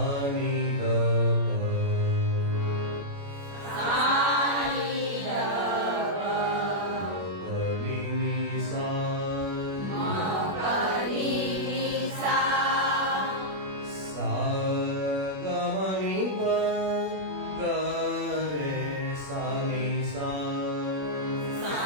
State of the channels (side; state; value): left; late; 21 ms